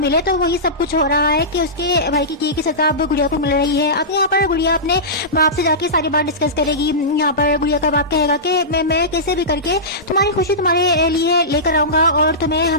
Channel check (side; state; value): both; normal; correlation -0.18